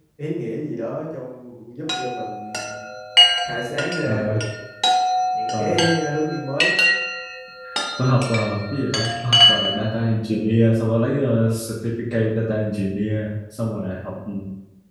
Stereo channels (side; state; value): both; identical; correlation 1.00